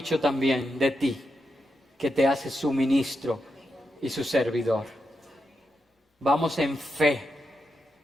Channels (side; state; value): both; normal; correlation 0.86